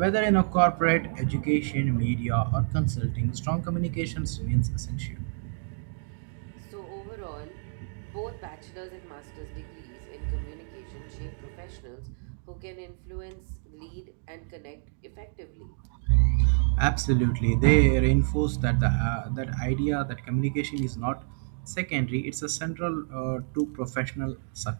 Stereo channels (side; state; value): left; silent; digital silence